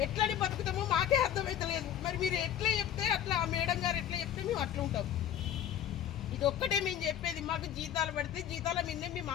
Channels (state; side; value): quieter; right; 10.2 dB